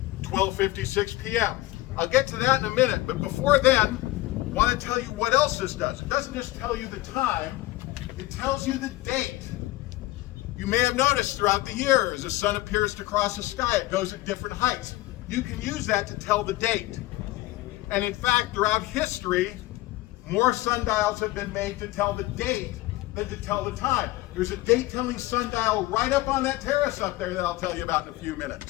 12:56 p.m.? I'll get to that in a minute, but before then, I want to tell you what else this does. It doesn't just tell you the time, it tells you the date. You may have noticed throughout the year, as the sun appears to cross the sky, it goes at different heights. You can use that to tell the date. And in fact, throughout history, more sundials have been made to tell the date than to tell the time. There's a date-telling sundial right up on that terrace up there that I'll tell you about in a few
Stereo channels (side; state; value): right; quieter; 18.1 dB